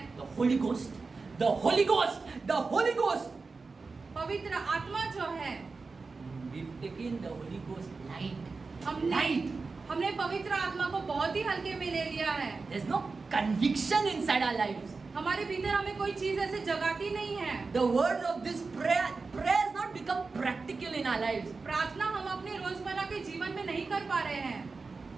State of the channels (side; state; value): left; quieter; 4.2 dB